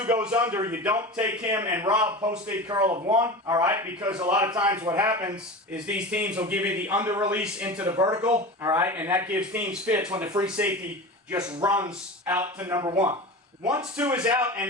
goes under, you don't take him and rob post-dig curl of 1, all right, because a lot of times what happens is these teams will give you the under release into the vertical, all right, and that gives teams fits when the free safety just runs out to number 1. Once 2 is out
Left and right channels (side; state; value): both; normal; correlation 0.30